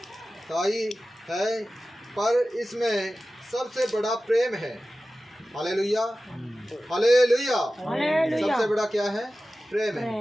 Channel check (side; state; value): both; normal; correlation 0.95